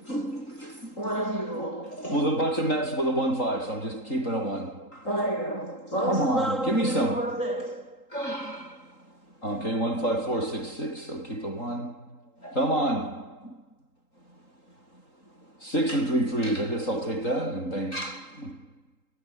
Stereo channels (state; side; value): late; right; 3.8 ms